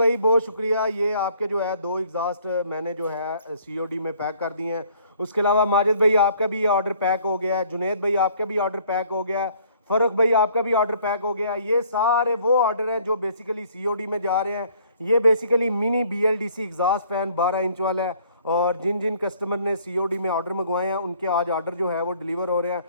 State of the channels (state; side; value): inverted; both; correlation -0.59